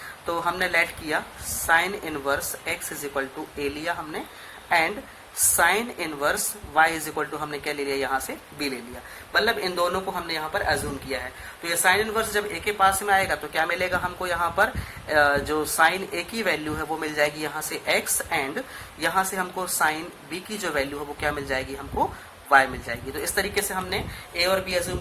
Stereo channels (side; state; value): both; identical; correlation 1.00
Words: तो हमने लेट किया sine inverse x is equal to a लिया हमने, and sine inverse y is equal to हमने क्या ले लिया, यहाँ से b ले लिया। मतलब इन दोनों को हमने यहाँ पर अज्यूम किया है। तो ये साइन इनवर्स जब a के पास में आएगा तो क्या मिलेगा हमको, यहाँ पर जो साइन a की वैल्यू है वो मिल जाएगी यहाँ से x, एंड यहाँ से हमको साइन b की जो वैल्यू है वो क्या मिल जाएगी, हमको y मिल जाएगी। तो इस तरीके से हमने a और b अज्यूम